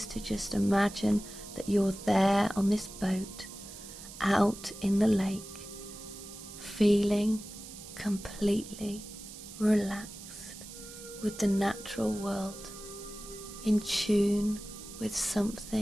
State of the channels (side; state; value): right; noise; hiss, 14 dB below the sound